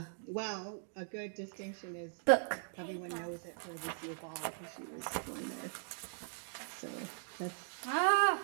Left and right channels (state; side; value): silent; left; digital silence